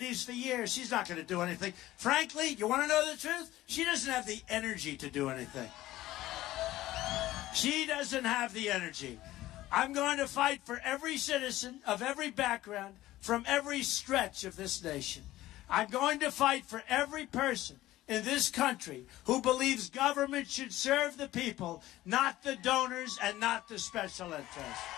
for years. She's not going to do anything. Frankly, you want to know the truth? She doesn't have the energy to do anything. She doesn't have the energy. I'm going to fight for every citizen of every background from every stretch of this nation. I'm going to fight for every person in this country who believes government should serve the people, not the donors and not the special interests.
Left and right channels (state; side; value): quieter; right; 15.8 dB